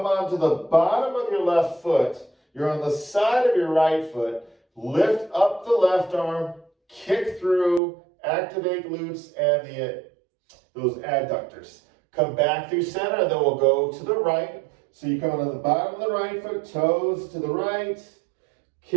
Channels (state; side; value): drops out; left; at 7.8 s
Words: onto the bottom of your left foot. You're on the side of your right foot. Lift up the left arm. Kick through, activate glutes and those adductors. Come back through center, and then we'll go to the right. So you come on the bottom of the right foot, toes to the right,